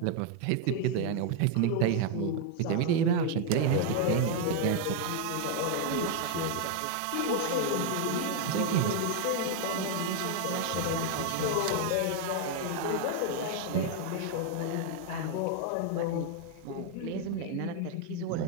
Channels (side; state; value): both; different; correlation 0.00